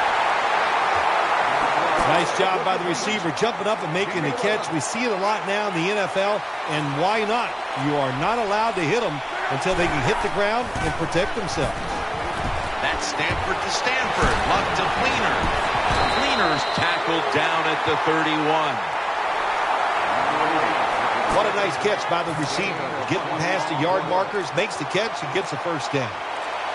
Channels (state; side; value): identical; both; correlation 1.00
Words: Nice job by the receiver, jumping up and making the catch. We see it a lot now in the NFL, and why not? You are not allowed to hit them until they can hit the ground and protect themselves. That's Stanford to Stanford. Luck to Fleener. Fleener's tackled down at the 31. What a nice catch by the receiver. Getting past the yard markers, makes the catch, and gets a first down.